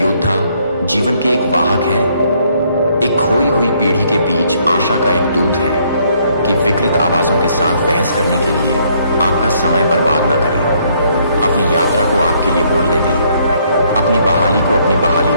जीवन के एक वाहक हैं, एक खोई हुई पीढ़ी के बीच आशा का एक दूत है कि विकृत आवाजों के साथ बहस करने के लिए आपका समय बर्बाद ना करें, अपनी यात्रा को आपके लिए बोलने दें, अपनी बहाली को अपनी बहाली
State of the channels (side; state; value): both; inverted; correlation -0.68